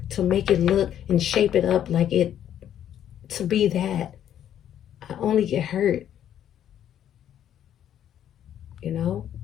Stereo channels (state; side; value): quieter; right; 10.4 dB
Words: to make it look and shape it up like it to be that, I only get hurt?